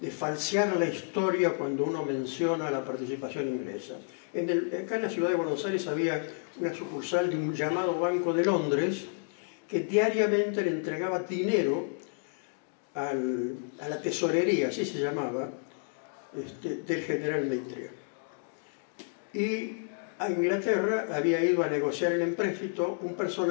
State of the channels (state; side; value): silent; right; 57 dB below the other